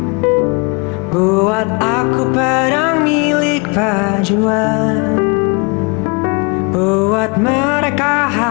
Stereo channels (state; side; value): quieter; right; 31.1 dB